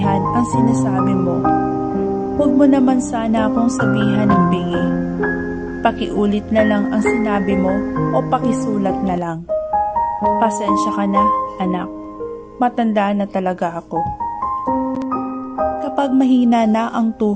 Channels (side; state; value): both; identical; correlation 1.00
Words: ang sinasabi mo, huwag mo naman sana akong sabihan ng bingi. Pakiulit na lang ang sinabi mo o pakisulat na lang. Pasensya ka na, anak. Matanda na talaga ako. Kapag mahina na ang